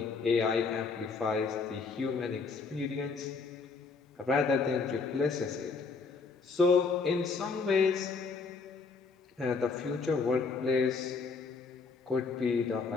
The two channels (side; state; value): right; quieter; 4.7 dB